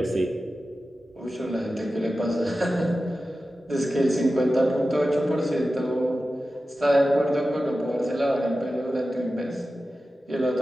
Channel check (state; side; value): normal; both; correlation 0.94